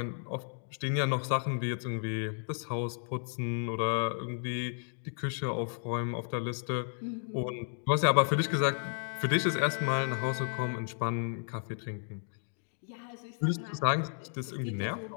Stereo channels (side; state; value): right; silent; 56 dB below the other